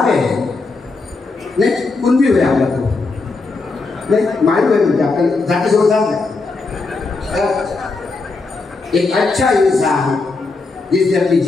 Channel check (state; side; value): quieter; right; 3.8 dB